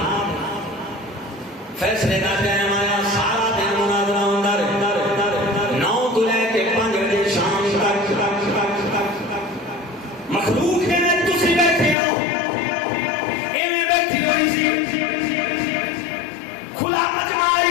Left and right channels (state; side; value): drops out; right; at 12.0 s